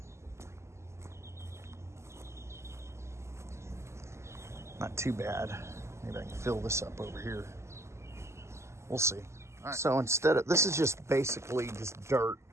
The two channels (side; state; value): left; late; 0.13 ms